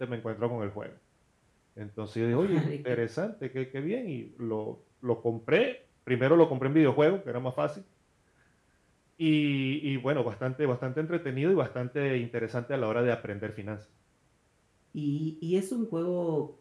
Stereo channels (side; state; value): both; identical; correlation 1.00